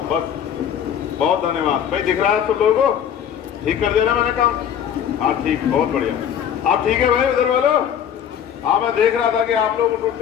बस। बहुत धन्यवाद भाई। दिख रहा है सब लोगों को? ठीक कर दिया ना मैंने काम? हाँ ठीक, बहुत बढ़िया। आप ठीक है भाई उधर वालों? हाँ, मैं देख रहा था कि आप लोग उठ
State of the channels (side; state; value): right; quieter; 9.0 dB